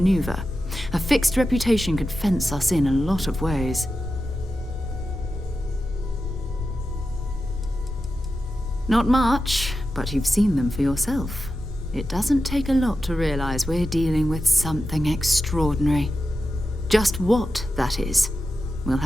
A fixed reputation could fence us in a lot of ways. Not much, but you've seen them for yourself. It doesn't take a lot to realize we're dealing with something extraordinary. Just what that is, we'll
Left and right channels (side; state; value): both; normal; correlation 0.91